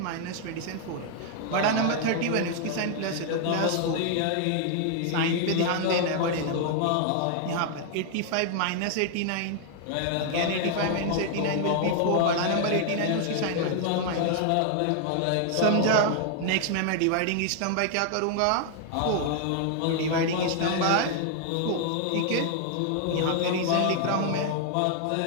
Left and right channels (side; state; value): both; different; correlation 0.00